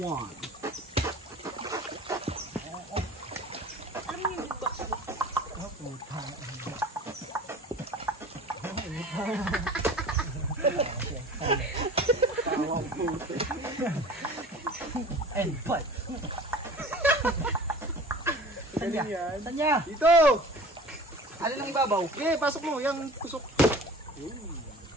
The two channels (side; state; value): both; normal; correlation 0.42